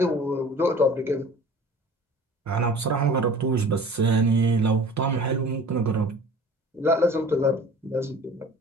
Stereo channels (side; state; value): both; normal; correlation 0.44